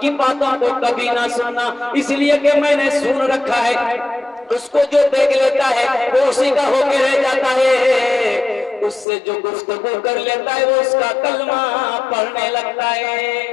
बातों को कभी ना सुनना, इसलिए कि मैंने सुन रखा है उसको जो देख लेता है वो उसी का होके रह जाता है, उससे जो गुफ्तगू कर लेता है वो उसका कलमा पढ़ने लगता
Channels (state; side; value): drops out; right; at 9.1 s